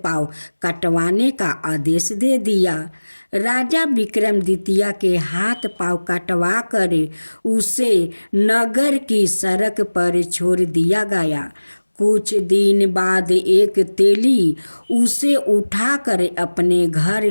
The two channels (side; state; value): both; inverted; correlation -1.00